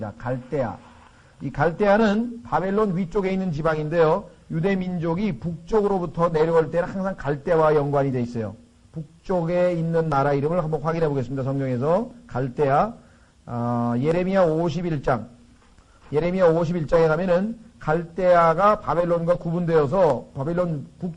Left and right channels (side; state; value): both; identical; correlation 1.00